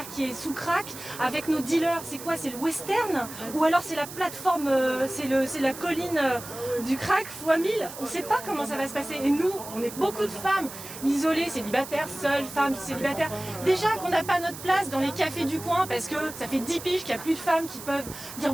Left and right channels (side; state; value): right; noise; hiss, 12 dB below the sound